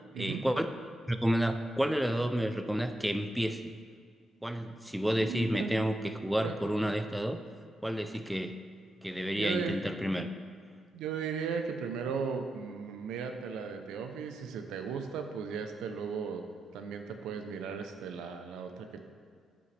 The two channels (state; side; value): normal; both; correlation 0.87